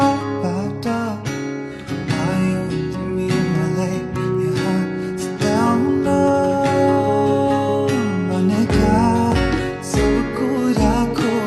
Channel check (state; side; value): identical; both; correlation 1.00